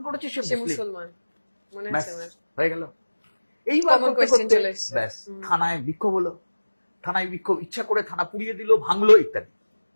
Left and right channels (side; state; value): both; inverted; correlation -1.00